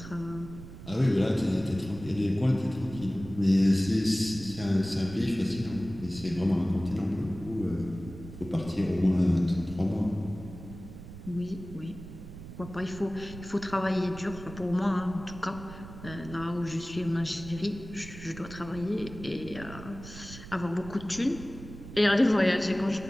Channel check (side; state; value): right; noise; rumble, 14 dB below the sound